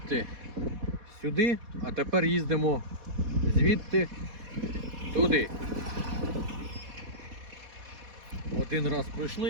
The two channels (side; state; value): left; late; 4.1 ms